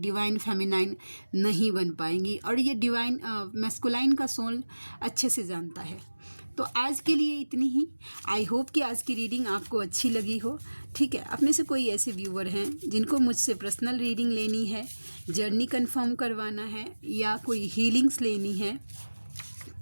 फेमिनाइन नहीं बन पाएंगी। और ये डिवाइन मैस्कुलाइन का सोल अच्छे से जानता है। तो आज के लिए इतनी ही। आई होप कि आज की रीडिंग आपको अच्छी लगी हो, ठीक है। आप में से कोई ऐसे व्यूअर हैं जिनको मुझसे पर्सनल रीडिंग लेनी है, जर्नी कंफर्म करवाना है या कोई हीलिंग्स लेनी है,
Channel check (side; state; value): both; inverted; correlation -1.00